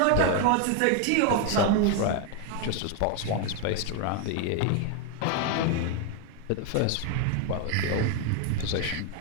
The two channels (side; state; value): both; different; correlation 0.01